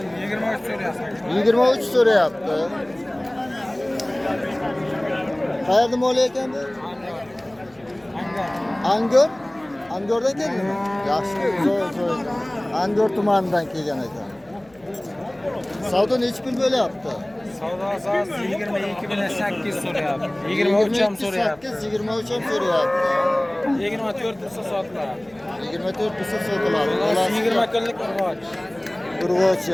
23 so'rayapti. Qayerda mol ekan bu? Angor? Angordan keldimi? Yaxshi, zo'r. Angor tumanidan kelgan ekan. Savdo necha pul bo'lyapti? Savdo asosida 22 bilan 8 so'rayapti. 23 ham so'rayapti. 23 ham so'rayapti. 24 bo'lsa sotiladi. 24 bo'lsa sotiladi. 20 kunlik urg'och.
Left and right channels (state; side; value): noise; left; hum, 29 dB below the sound